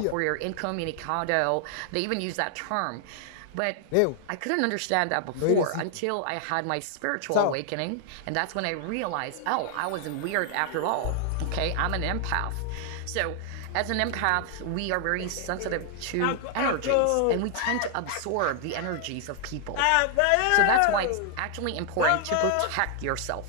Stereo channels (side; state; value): both; different; correlation 0.00